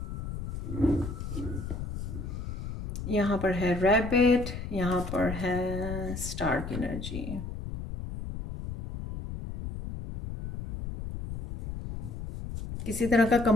यहाँ पर है रैबिट, यहाँ पर है स्टार की एनर्जी। किसी तरह का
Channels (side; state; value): left; noise; rumble, 7 dB below the sound